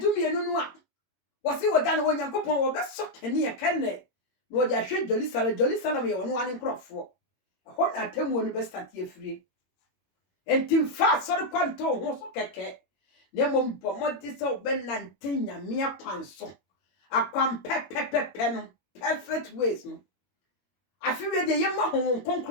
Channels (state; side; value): late; right; 22 ms